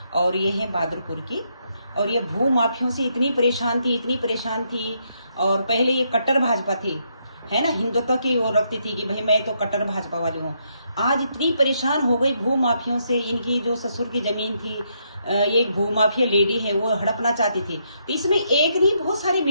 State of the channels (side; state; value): both; inverted; correlation -0.77